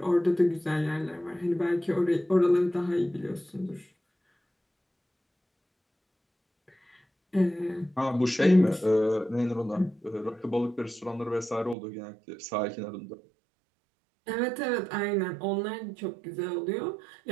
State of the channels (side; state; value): left; drops out; at 11.8 s